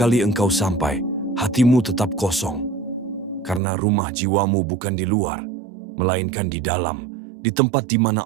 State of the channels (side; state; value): left; drops out; at 3.6 s